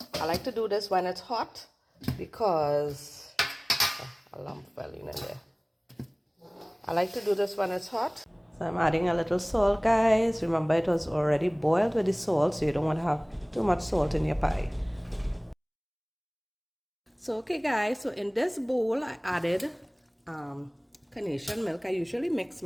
I like to do this when it's hot because a lump fell in there. I like to do this when it's hot. So I'm adding a little salt, guys. Remember, it was already boiled with the salt, so you don't want to have too much salt in your pie. So okay guys, so in this bowl I added carnation milk. I usually mix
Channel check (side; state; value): both; identical; correlation 1.00